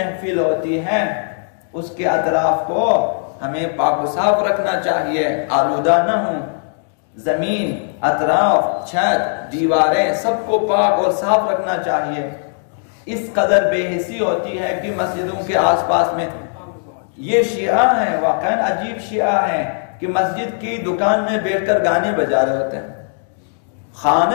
ہوتی ہے اس کے اطراف کو ہمیں پاک و صاف رکھنا چاہیے، آلودہ نہ ہوں. زمین، اطراف، چھت، دیواریں سب کو پاک اور صاف رکھنا چاہیے. اس قدر بے حسی ہوتی ہے کہ مسجدوں کے آس پاس میں یہ شیعہ ہیں، واقعاً عجیب شیعہ ہیں کہ مسجد کی دکان میں بیٹھ کر گانے بجا رہے ہوتے ہیں،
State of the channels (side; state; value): right; silent; digital silence